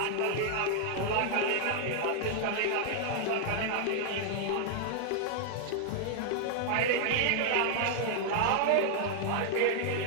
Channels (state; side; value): different; both; correlation 0.00